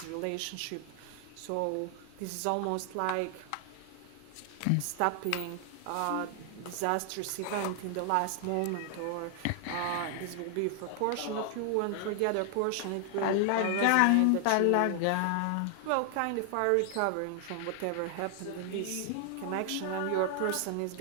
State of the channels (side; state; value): both; different; correlation 0.00